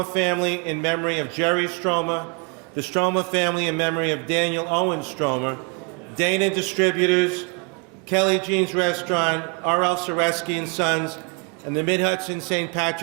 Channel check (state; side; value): quieter; left; 33.6 dB